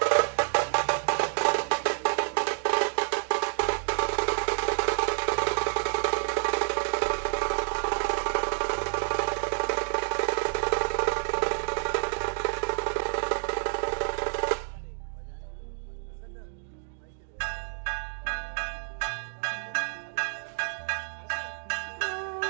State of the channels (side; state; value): left; silent; digital silence